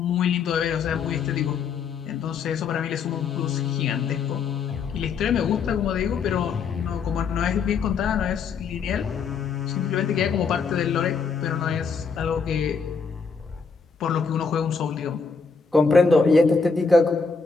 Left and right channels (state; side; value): quieter; right; 5.3 dB